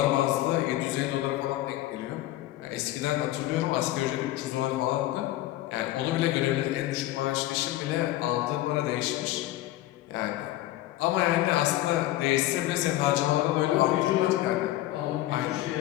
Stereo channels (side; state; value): right; quieter; 15.5 dB